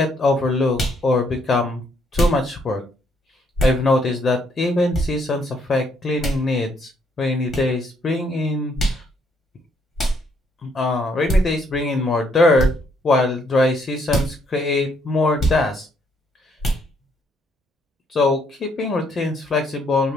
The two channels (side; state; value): both; normal; correlation 0.70